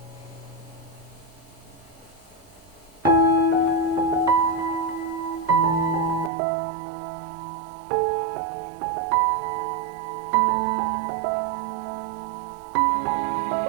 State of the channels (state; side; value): drops out; left; at 6.3 s